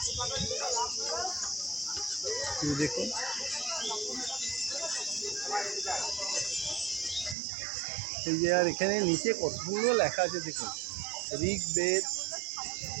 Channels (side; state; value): left; drops out; at 7.4 s